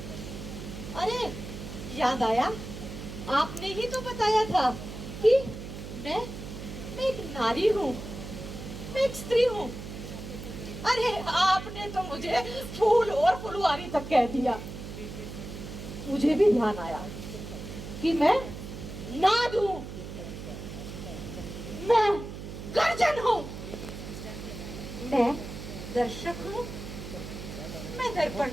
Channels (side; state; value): right; noise; hum, 10 dB below the sound